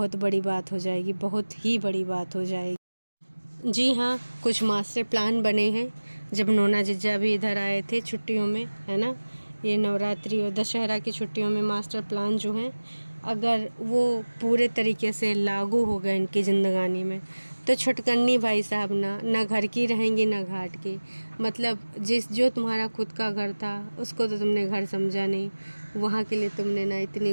बड़ी बात हो जाएगी, बहुत ही बड़ी बात हो जाएगी। जी हाँ, कुछ मास्टर प्लान बने हैं। जब नोना जिज्जा भी इधर आए थे छुट्टियों में, है ना, ये नवरात्रि और दशहरा की छुट्टियों में मास्टर प्लान जो हैं, अगर वो पूरे तरीके से लागू हो गए इनकी ज़िंदगानी में, तो छुटकन्नी भाई साहब ना घर की रहेंगी ना घाट की। मतलब जो तुम्हारा खुद का घर था उसको तो तुमने घर समझा नहीं, वहाँ के लिए तुमने ना इतनी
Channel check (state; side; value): inverted; both; correlation -1.00